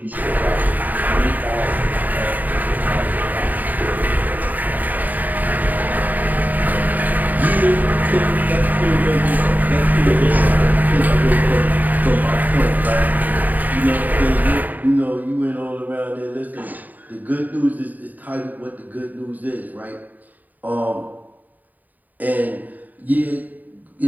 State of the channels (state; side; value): late; left; 0.083 ms